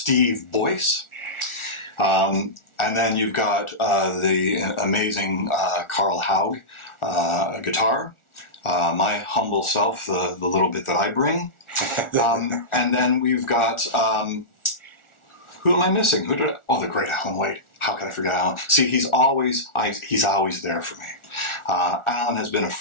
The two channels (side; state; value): right; late; 1.4 ms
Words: Boyce. And then you've got the amazing Carl Haug, guitar. My humble self, the little bit that I bring. And then we've got, who am I missing? The great Alan White. How could I forget Alan? See, he's always there for me. Alan has been a